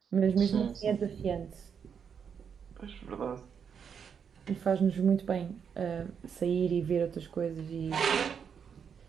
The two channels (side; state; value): left; quieter; 7.1 dB